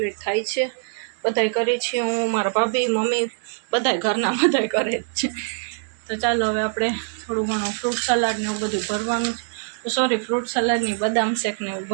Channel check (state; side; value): silent; left; digital silence